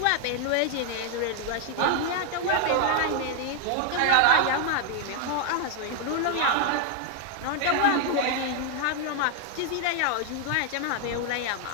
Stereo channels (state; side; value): different; both; correlation 0.00